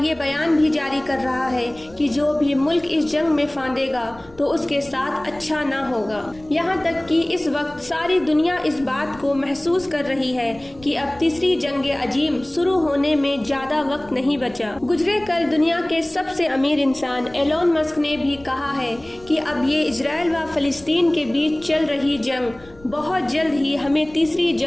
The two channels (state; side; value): noise; left; rumble, 23 dB below the sound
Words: یہ بیان بھی جاری کر رہا ہے کہ جو بھی ملک اس جنگ میں پھانسے گا تو اس کے ساتھ اچھا نہ ہوگا۔ یہاں تک کہ اس وقت ساری دنیا اس بات کو محسوس کر رہی ہے کہ اب تیسری جنگ عظیم شروع ہونے میں زیادہ وقت نہیں بچا۔ گزرے کل دنیا کے سب سے امیر انسان ایلون مسک نے بھی کہا ہے کہ اب یہ اسرائیل و فلسطین کے بیچ چل رہی جنگ بہت جلد ہی ہمیں تیسری